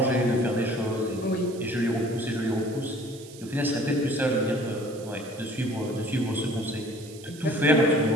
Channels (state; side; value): noise; right; hiss, 19 dB below the sound